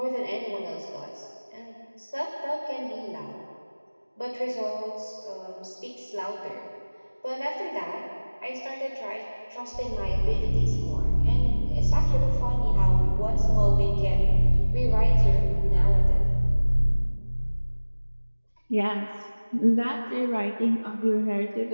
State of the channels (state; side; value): inverted; both; correlation -1.00